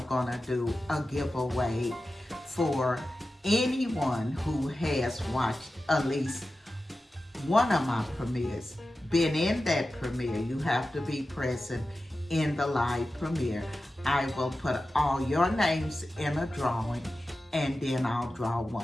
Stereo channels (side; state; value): both; normal; correlation 0.93